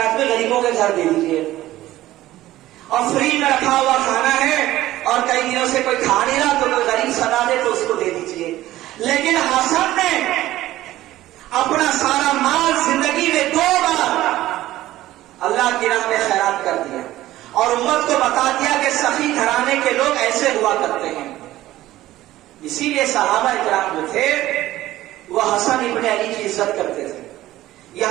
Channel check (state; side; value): quieter; left; 15.3 dB